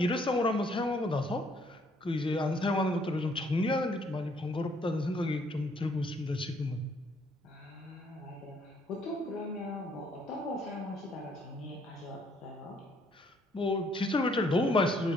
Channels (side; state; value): both; normal; correlation 0.66